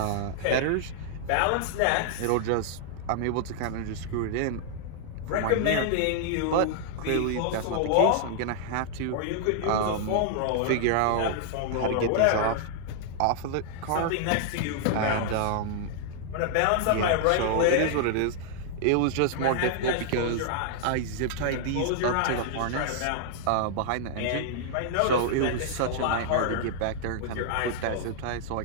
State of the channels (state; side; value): different; both; correlation -0.01